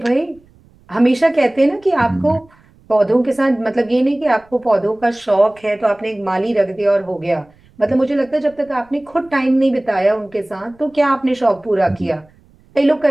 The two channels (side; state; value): right; noise; rumble, 30 dB below the sound